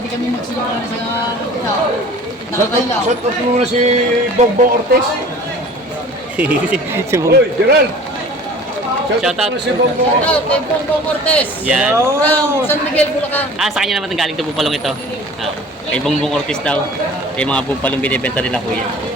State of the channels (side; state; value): both; normal; correlation 0.45